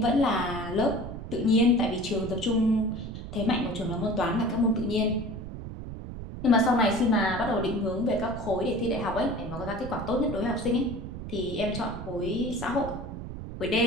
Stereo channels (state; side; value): noise; right; rumble, 9 dB below the sound